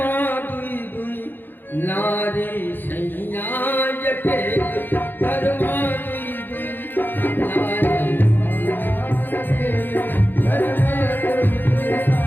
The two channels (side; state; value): right; late; 0.093 ms